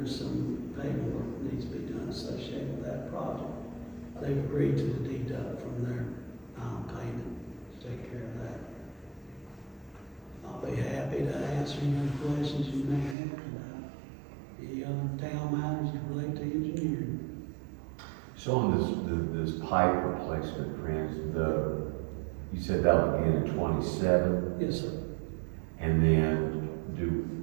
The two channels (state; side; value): drops out; left; at 13.2 s